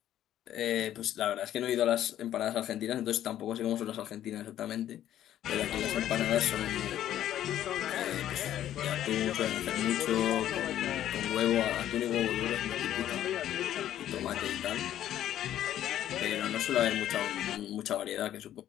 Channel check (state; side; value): quieter; right; 11.8 dB